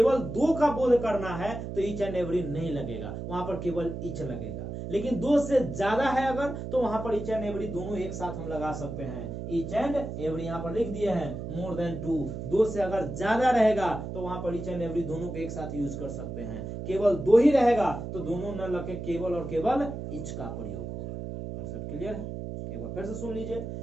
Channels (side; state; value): right; noise; hum, 7 dB below the sound